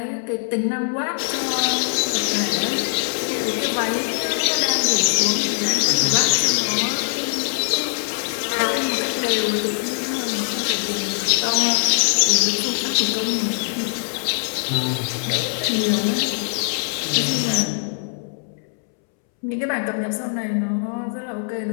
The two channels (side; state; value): right; silent; 64 dB below the other